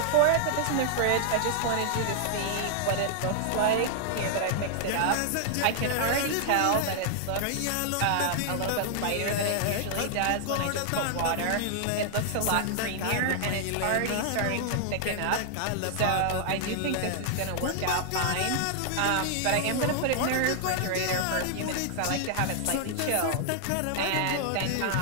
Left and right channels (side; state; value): both; different; correlation -0.01